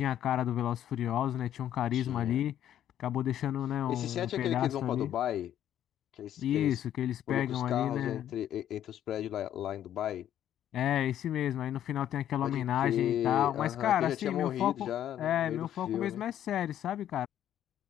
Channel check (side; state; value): right; quieter; 11.1 dB